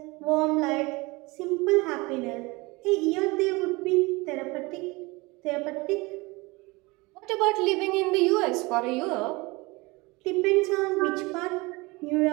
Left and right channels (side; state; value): left; quieter; 24.1 dB